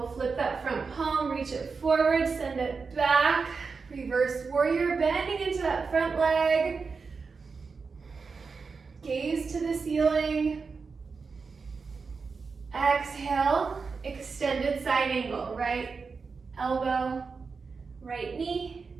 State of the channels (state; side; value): quieter; left; 4.9 dB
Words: Flip that front palm, reach it forward, send it back. Reverse warrior, bending into that front leg. Gaze to the ceiling. Exhale, extended side angle. Right elbow, right knee,